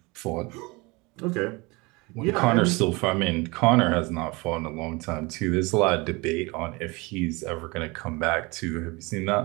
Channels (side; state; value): left; quieter; 25.4 dB